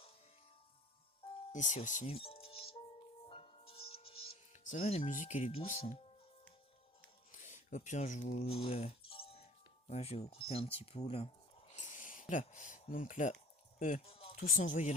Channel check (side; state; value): both; normal; correlation 0.46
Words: ici aussi. Ça va, la musique, elle est douce. Hein. Au pire, je vais vous couper un petit peu, là. Voilà, donc là, tous envoyés